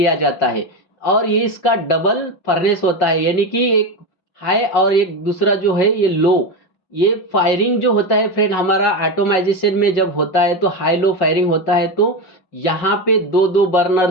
जाता है, और ये इसका डबल फर्नेस होता है, यानी कि एक हाई और एक दूसरा जो है ये लो। ये फायरिंग जो होता है फ्रेंड हमारा ऑटोमाइजेशन में जब होता है तो हाई लो फायरिंग होता है। तो यहाँ पे दो दो burner,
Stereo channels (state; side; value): late; right; 5.3 ms